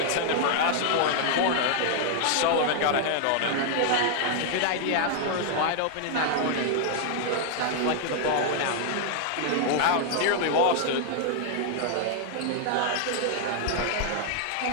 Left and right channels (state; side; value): different; both; correlation 0.00